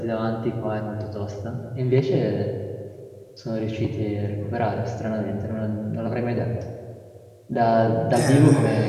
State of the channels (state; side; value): identical; both; correlation 1.00